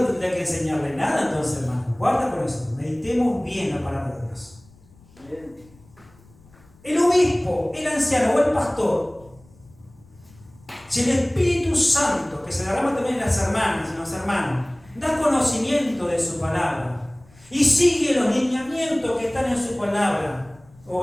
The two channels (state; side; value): noise; left; rumble, 27 dB below the sound